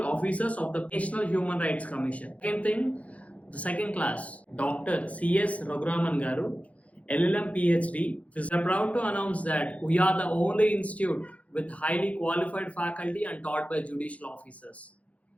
officers of the National Human Rights Commission. Second thing, the second class, Dr. C.S. Raguraman Garu, LLM PhD. We are proud to announce that we are the only institute with highly qualified faculty and taught by judicial officers.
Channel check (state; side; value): late; right; 0.066 ms